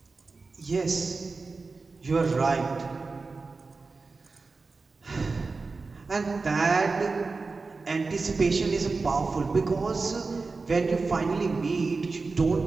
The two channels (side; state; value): left; quieter; 4.0 dB